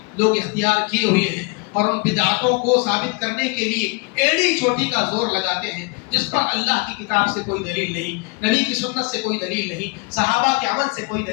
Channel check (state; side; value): quieter; right; 29.4 dB